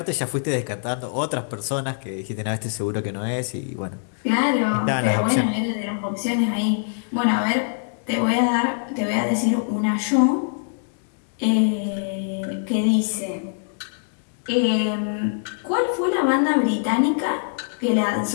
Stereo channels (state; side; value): silent; right; digital silence